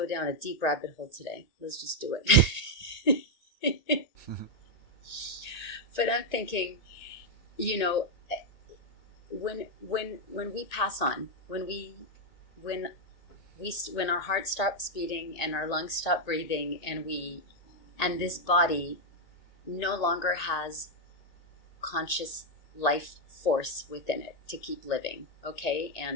down a deep rabbit hole today. Let's just do it. But I'm thinking, when we pass on, when our heart stops beating and our lungs stop breathing, and this body no longer has conscious life force within it to keep living, okay?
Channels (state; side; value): late; right; 1.8 ms